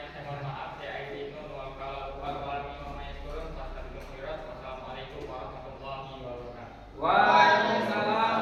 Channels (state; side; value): identical; both; correlation 1.00